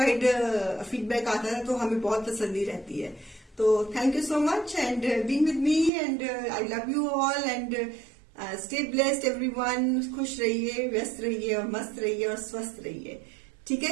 फीडबैक आता है तो हमें बहुत तसल्ली रहती है। तो thank you so much and being with me and I love you all and stay blessed everyone. खुश रहिए, व्यस्त रहिए और मस्त रहिए और स्वस्थ रहिए। ठीक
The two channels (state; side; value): drops out; left; at 5.9 s